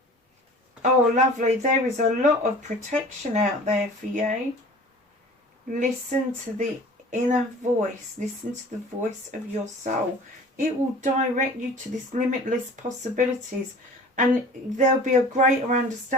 Oh, lovely. There is a lot of protection out there for you. Listen to the inner voice. Listen to the voice of your soul. It will direct you to this limitless possibilities. And there'll be a greater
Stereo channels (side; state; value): both; normal; correlation 0.44